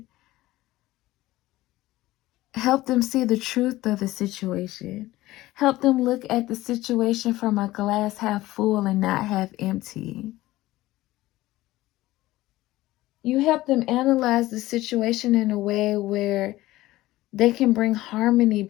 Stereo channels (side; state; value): right; quieter; 17.2 dB